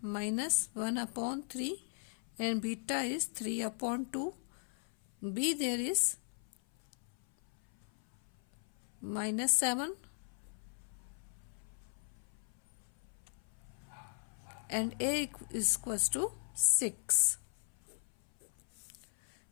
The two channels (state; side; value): silent; right; 52 dB below the other